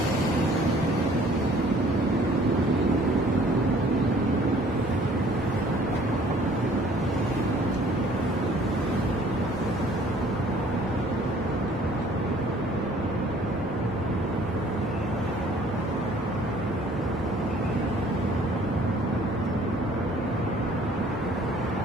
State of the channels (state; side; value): normal; both; correlation 0.56